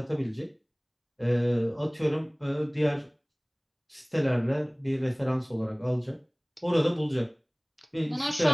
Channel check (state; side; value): identical; both; correlation 1.00